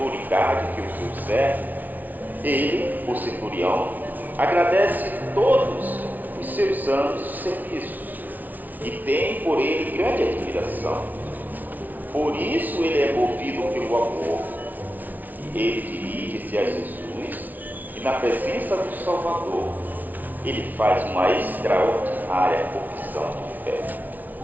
que o seu servo, ele, o centurião, agradece todos os seus anos de serviços e tem por ele grande admiração. Por isso ele é movido pelo amor. Ele dirige-se a Jesus e, na presença do Salvador, ele faz uma extraordinária confissão de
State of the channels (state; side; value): late; left; 0.080 ms